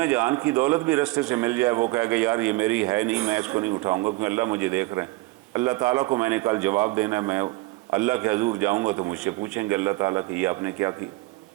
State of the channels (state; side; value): quieter; left; 21.6 dB